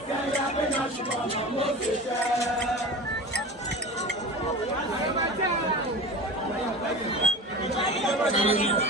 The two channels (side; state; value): both; normal; correlation 0.33